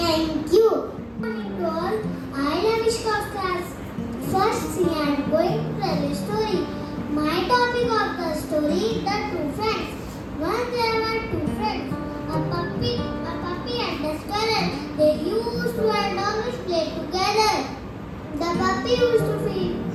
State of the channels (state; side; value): identical; both; correlation 1.00